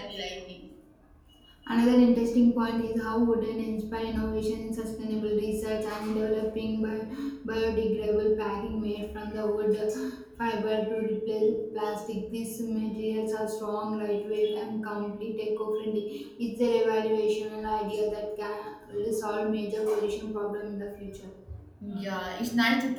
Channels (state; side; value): identical; both; correlation 1.00